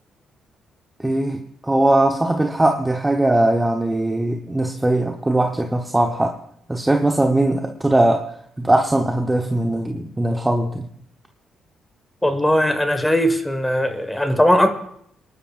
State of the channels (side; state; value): both; normal; correlation 0.95